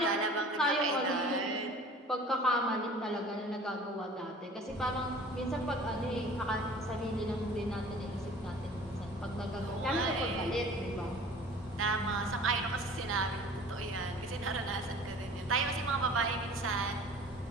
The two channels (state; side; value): normal; both; correlation 0.45